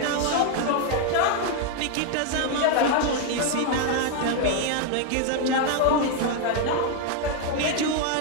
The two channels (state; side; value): different; both; correlation 0.01